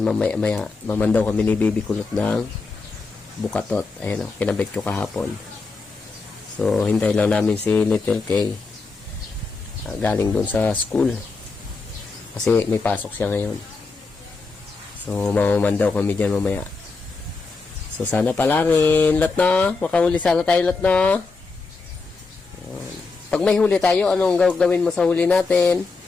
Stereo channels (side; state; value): right; quieter; 4.1 dB